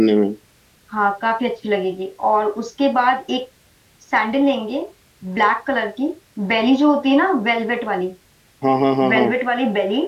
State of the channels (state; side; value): identical; both; correlation 1.00